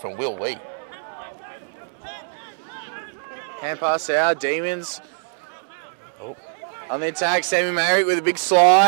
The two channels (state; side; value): silent; left; digital silence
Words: Will Lee. Hand pass out, Demons. Oh. On the attack, Sammy Merrick with a big